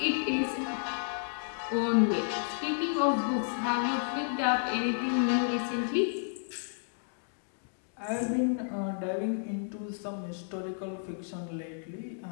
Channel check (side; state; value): right; silent; digital silence